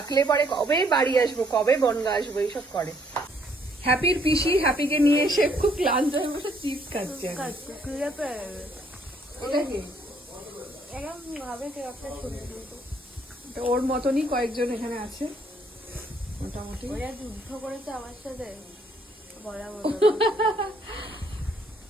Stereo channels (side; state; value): both; normal; correlation 0.67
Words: পরে কবে বাড়ি আসবো, কবে বনগা আসবো এইসব করে। হ্যাপির পিসি হ্যাপিকে নিয়ে এসে খুব ক্লান্ত হয়ে বসে চিপস খাচ্ছে। ওটা কি? তো ওর মতনই কয়েকজন এখানে আছে মোটামুটি। ওরা যুদ্ধ করেছে আমার সাথে বলা বলো।